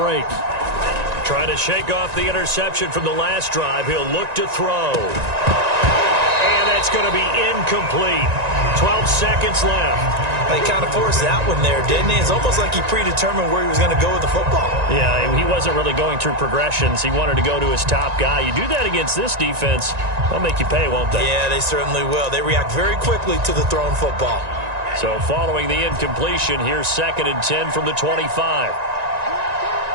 Trying to shake off the interception from the last drive. He'll look to throw. And that's going to be incomplete. 12 seconds left. They kind of forced that one there, didn't he? It's almost like he predetermined where he was going to go with the football. Yeah, he wasn't really going through progressions. He wanted to go to his top guy. You do that against this defense, they'll make you pay, won't they? Yeah, they certainly will. They react very quickly to the thrown football. So following the incompletion, here's 2nd and 10 from the 25.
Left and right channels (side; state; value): left; late; 1.9 ms